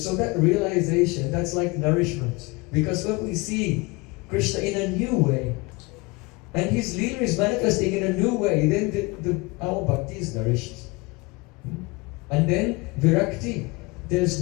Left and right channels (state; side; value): quieter; right; 25.5 dB